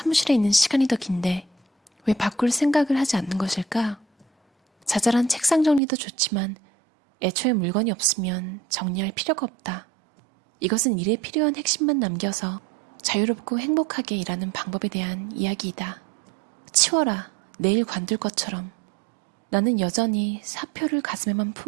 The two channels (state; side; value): drops out; left; at 5.8 s